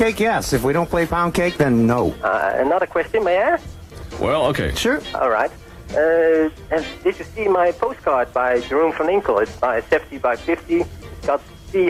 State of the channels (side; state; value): both; identical; correlation 1.00